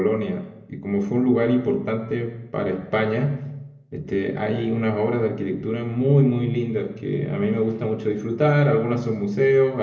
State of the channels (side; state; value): both; identical; correlation 1.00